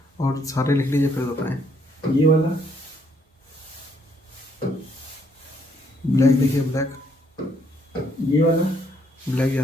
और सारे लिख लीजिए फिर बताएं। ये वाला, ब्लैक देखिए, ब्लैक ये वाला, ब्लैक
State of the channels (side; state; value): both; normal; correlation 0.69